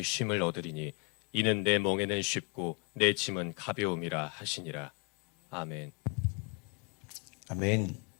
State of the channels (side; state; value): right; quieter; 31.6 dB